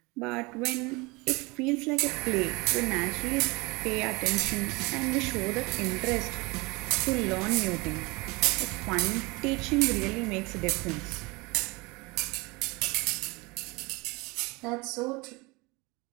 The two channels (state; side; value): quieter; left; 25.3 dB